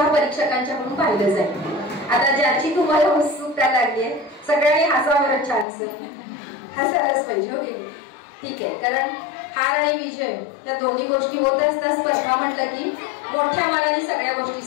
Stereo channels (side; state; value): right; drops out; at 5.7 s